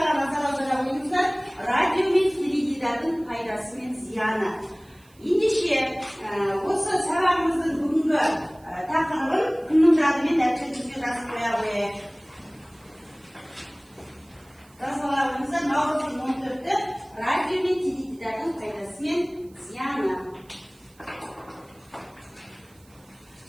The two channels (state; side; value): noise; right; hiss, 30 dB below the sound